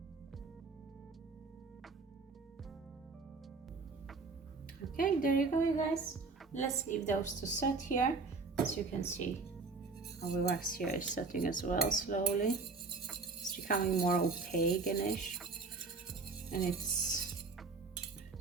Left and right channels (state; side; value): quieter; left; 4.1 dB